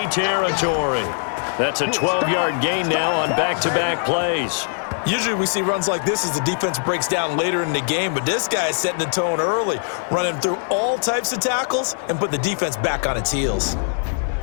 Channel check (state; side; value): silent; right; 63 dB below the other